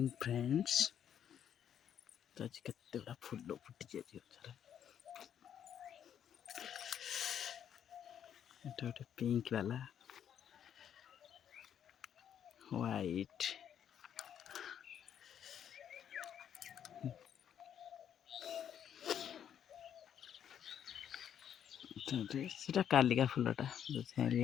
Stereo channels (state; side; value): quieter; right; 9.2 dB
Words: friends. तो आज केते बड़ा फूल फुटी जाए गोटे पिंक वाला व्हाइट सेटा कालिका फूलटा